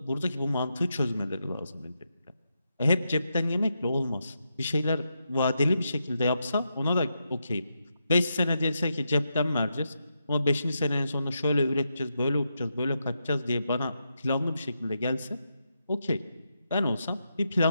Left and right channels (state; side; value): inverted; both; correlation -0.85